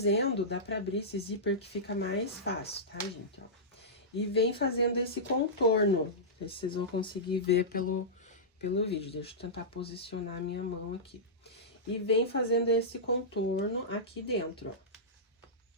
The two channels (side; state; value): both; normal; correlation -0.15